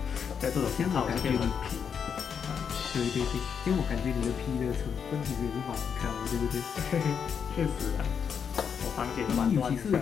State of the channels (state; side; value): quieter; right; 7.1 dB